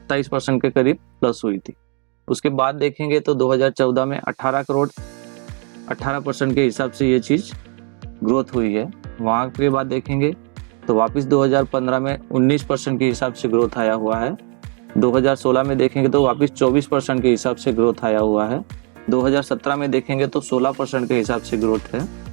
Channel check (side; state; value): left; quieter; 35.9 dB